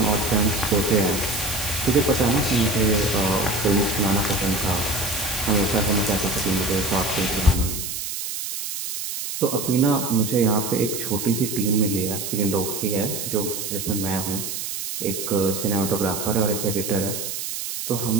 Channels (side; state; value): right; noise; hiss, 5 dB below the sound